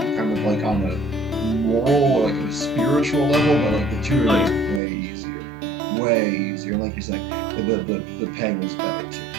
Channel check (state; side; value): drops out; left; at 4.8 s